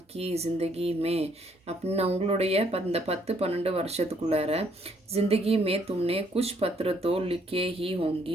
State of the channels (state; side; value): normal; both; correlation 0.67